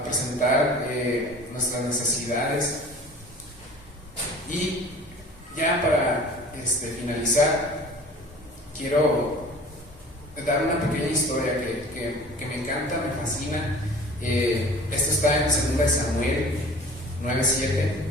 presentar nuestras necesidades. Y ya para finalizar, quiero dar una pequeña historia que me encanta, me fascina. Esto está en 2 Samuel 9:7.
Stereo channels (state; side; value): normal; both; correlation 0.44